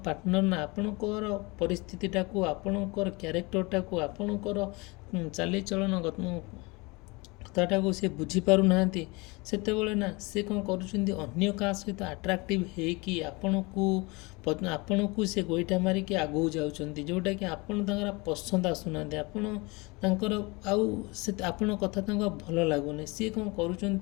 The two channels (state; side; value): quieter; right; 26.1 dB